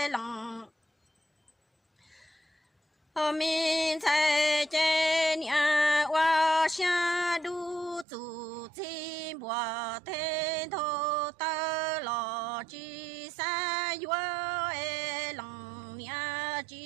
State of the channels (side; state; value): left; drops out; at 8.1 s